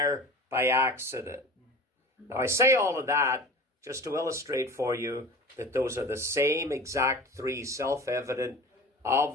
by accident. Now, I say all of that just to illustrate for you that those are the same exact three self-evident,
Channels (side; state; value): both; normal; correlation 0.36